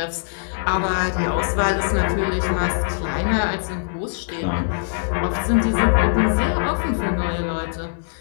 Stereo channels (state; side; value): silent; right; digital silence